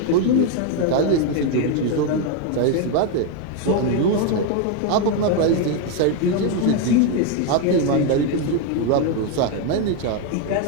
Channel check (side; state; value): both; different; correlation 0.01